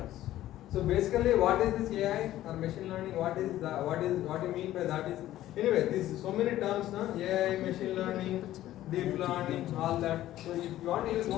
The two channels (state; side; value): quieter; right; 14.0 dB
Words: So basically, what is this AI or machine learning? What you mean by that is, anyway, this so many terms now, AI, machine learning, deep learning, all that. So if you want to use